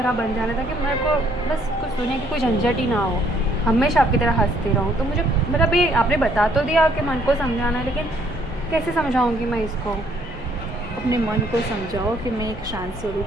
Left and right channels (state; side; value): normal; both; correlation 0.65